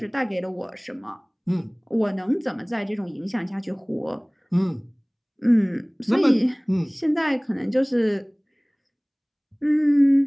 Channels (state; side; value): identical; both; correlation 1.00